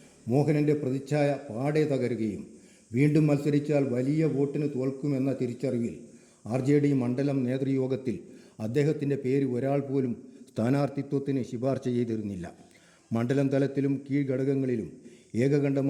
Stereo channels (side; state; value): both; identical; correlation 1.00